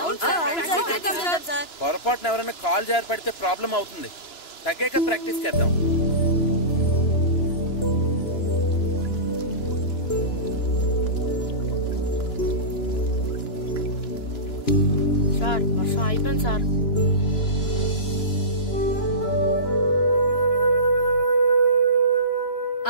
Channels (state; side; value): late; right; 2.9 ms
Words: పొరపాటున ఎవరైనా కాల్ జారి పడితే ప్రాబ్లం అవుతుంది. తగ్గాక ప్రాక్టీస్ చేద్దాం. సార్ వర్షం అయిపోయింది సార్.